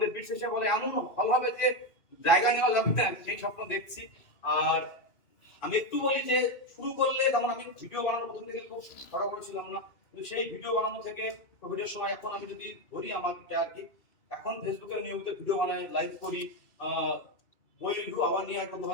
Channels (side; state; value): right; late; 2.6 ms